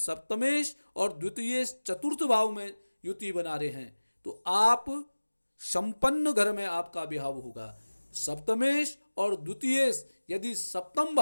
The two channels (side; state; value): both; inverted; correlation -1.00